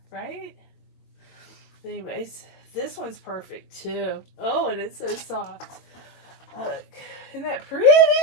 right? Anyways, this one's perfect too. Oh, and it's so soft. Look, isn't that pretty?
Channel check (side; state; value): right; late; 22 ms